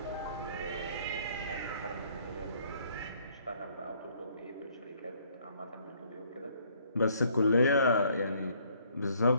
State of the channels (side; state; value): both; inverted; correlation -0.64